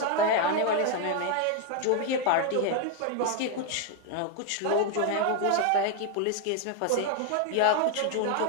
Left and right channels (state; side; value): different; both; correlation 0.01